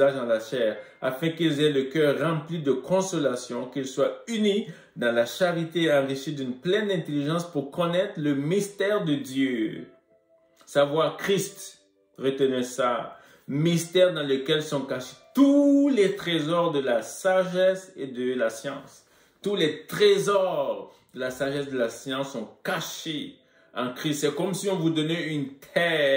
dans la chair, afin qu'ils aient le cœur rempli de consolation, qu'ils soient unis dans la charité et enrichis d'une pleine intelligence pour connaître le mystère de Dieu. » Savoir Christ, retenez ça, mystère dans lequel sont cachés tous les trésors de la sagesse et de la science. Tous les trésors de la sagesse et de la science sont cachés en Christ. C'est comme si on vous donnait une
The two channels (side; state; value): both; identical; correlation 1.00